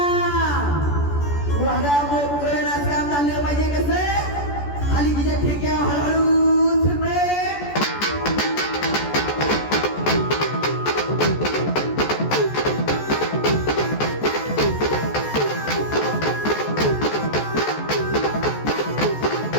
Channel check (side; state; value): right; late; 14 ms